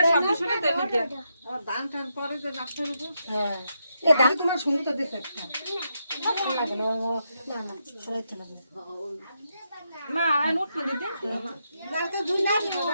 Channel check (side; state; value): both; inverted; correlation -0.82